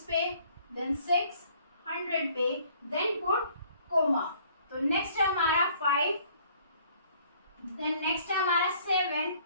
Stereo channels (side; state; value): both; inverted; correlation -0.59